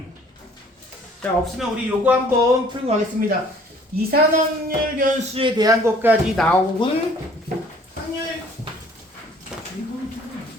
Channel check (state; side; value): normal; both; correlation 0.55